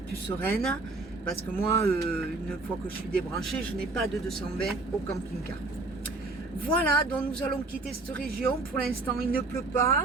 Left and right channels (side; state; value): left; quieter; 3.3 dB